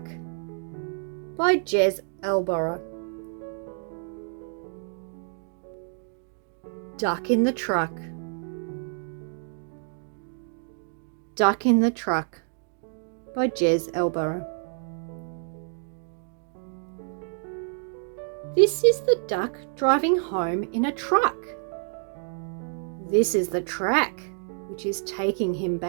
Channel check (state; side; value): silent; left; 59 dB below the other